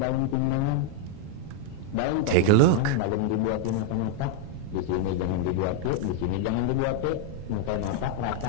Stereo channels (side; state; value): both; different; correlation 0.00